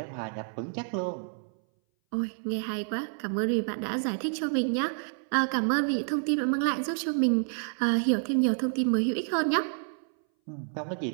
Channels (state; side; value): silent; left; 58 dB below the other